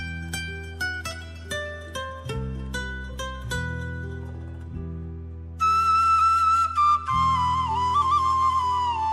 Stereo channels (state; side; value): identical; both; correlation 1.00